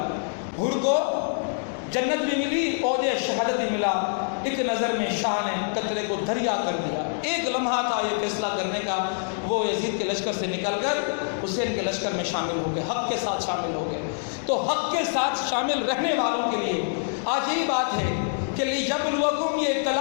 حر کو جنت بھی ملی، عہد شہادت بھی ملا. ایک نظر میں شاہ نے قطرے کو دریا کر دیا. ایک لمحہ تھا یہ فیصلہ کرنے کا، وہ یزید کے لشکر سے نکل کر حسین کے لشکر میں شامل ہو گئے، حق کے ساتھ شامل ہو گئے. تو حق کے ساتھ شامل رہنے والوں کے لیے آج یہی بات ہے کہ لیبلوکم، یہ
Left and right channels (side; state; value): right; silent; digital silence